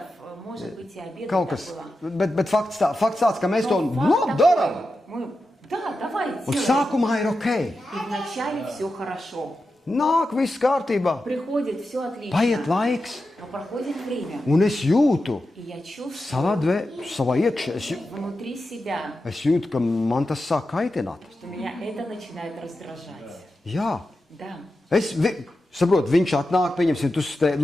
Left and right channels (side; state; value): both; normal; correlation 0.90